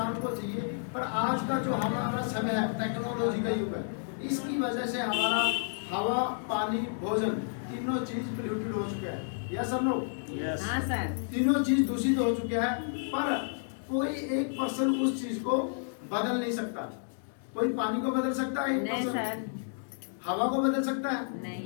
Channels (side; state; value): right; silent; digital silence